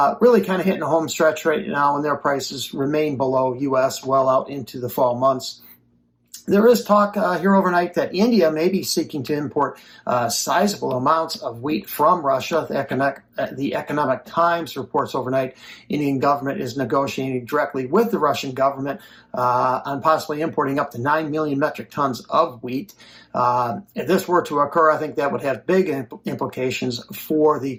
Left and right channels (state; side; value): identical; both; correlation 1.00